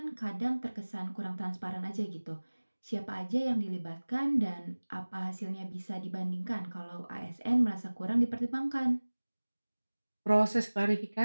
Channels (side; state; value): both; inverted; correlation -1.00